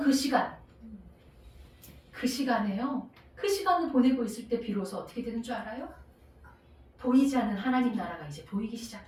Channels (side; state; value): both; identical; correlation 1.00